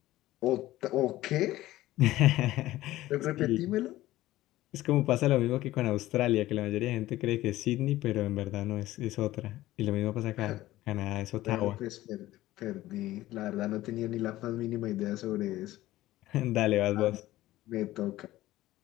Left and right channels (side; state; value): right; quieter; 16.0 dB